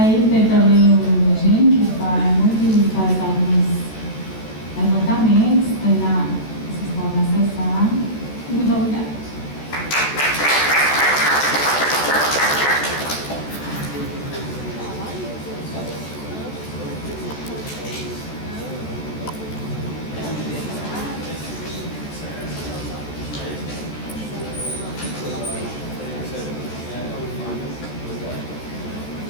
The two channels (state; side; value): late; right; 14 ms